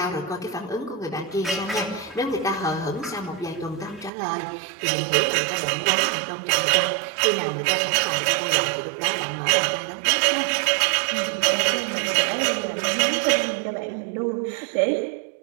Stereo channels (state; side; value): drops out; left; at 4.1 s